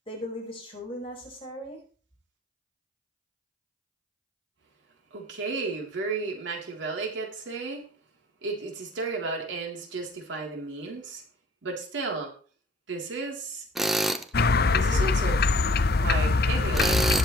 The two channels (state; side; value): normal; both; correlation 0.55